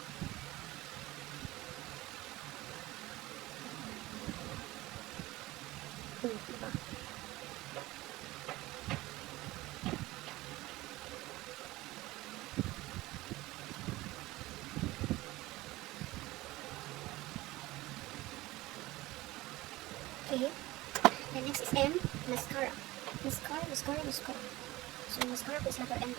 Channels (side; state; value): left; quieter; 18.9 dB